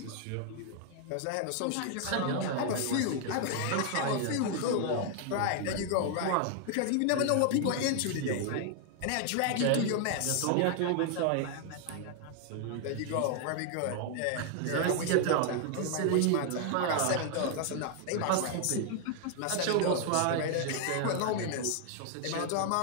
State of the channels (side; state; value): both; different; correlation 0.00